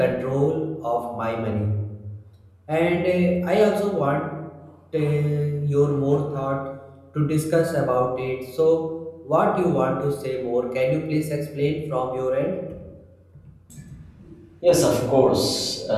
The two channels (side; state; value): both; identical; correlation 1.00